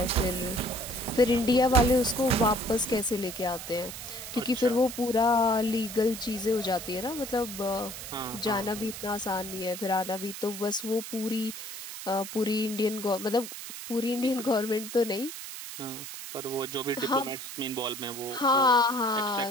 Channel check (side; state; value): right; noise; hiss, 9 dB below the sound